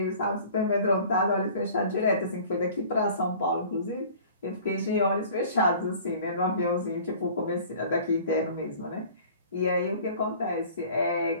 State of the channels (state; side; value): inverted; both; correlation -0.47